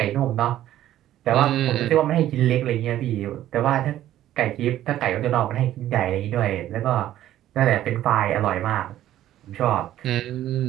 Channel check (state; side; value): quieter; left; 12.9 dB